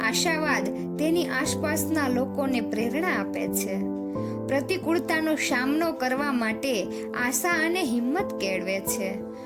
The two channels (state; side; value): identical; both; correlation 1.00